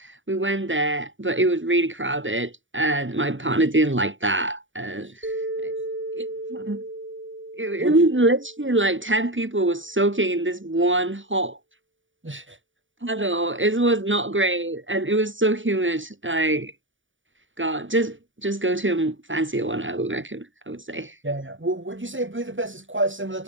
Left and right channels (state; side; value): late; left; 0.56 ms